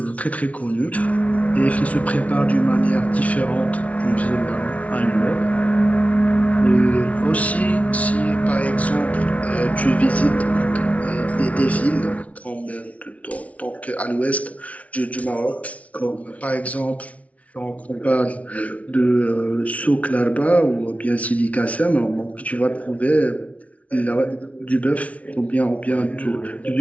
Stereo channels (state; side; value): late; right; 0.067 ms